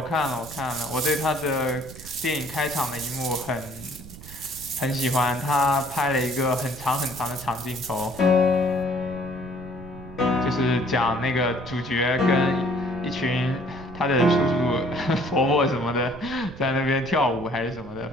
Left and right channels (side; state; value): right; noise; rumble, 16 dB below the sound